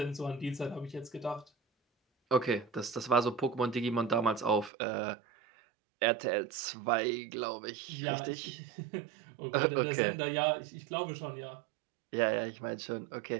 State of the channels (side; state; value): left; drops out; at 4.7 s